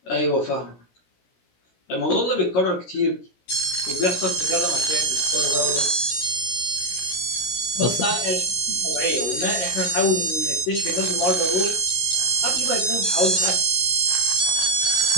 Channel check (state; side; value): late; right; 17 ms